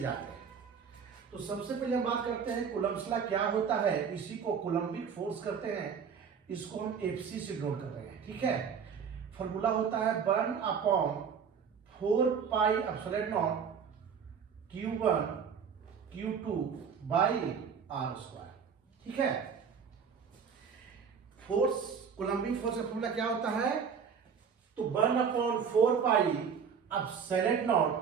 हैं। तो सबसे पहले हम बात करते हैं कूलम्ब्स लॉ क्या होता है। इसी को कूलम्बिक फोर्स करते हैं, इसको हम एफसी से डिनोट कर रहे हैं, ठीक है। फॉर्मूला होता है 1/4 pi epsilon not Q1 Q2 by R square, ठीक है। फोर्स, कूलम्बिक फोर्स का फॉर्मूला क्या होता है? तो 1/4 pi epsilon not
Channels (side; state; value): left; quieter; 6.7 dB